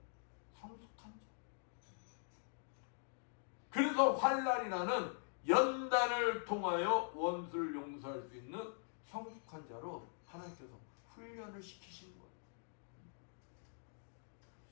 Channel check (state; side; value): silent; right; digital silence